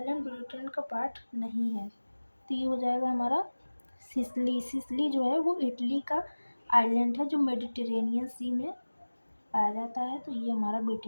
ब्रिटेन का पार्ट नहीं है, तो ये हो जाएगा हमारा सिसली। सिसली जो है वो इटली का आइलैंड है जो मेडिटेरेनियन सी में पाया जाता है, तो ये हमारा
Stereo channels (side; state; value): both; inverted; correlation -1.00